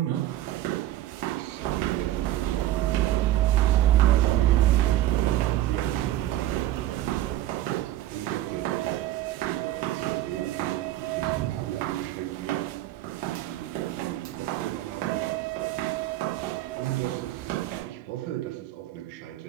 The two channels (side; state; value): left; quieter; 14.0 dB